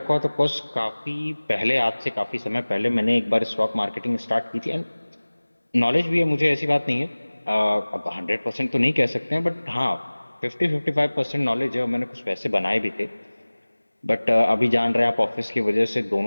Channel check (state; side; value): inverted; both; correlation -1.00